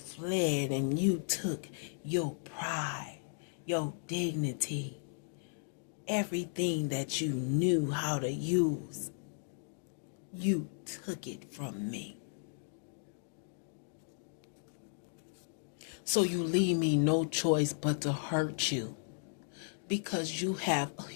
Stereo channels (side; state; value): right; silent; digital silence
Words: and you took your pride, your dignity, everything that you knew how to use. You took it from me. So you leave me no choice but to hurt you, because you have